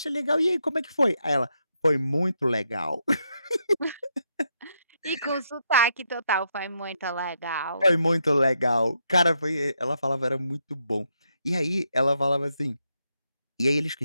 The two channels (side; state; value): both; inverted; correlation -0.80